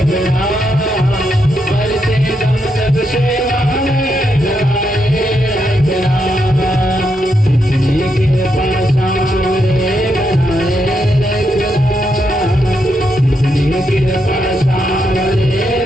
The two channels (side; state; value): both; normal; correlation 0.80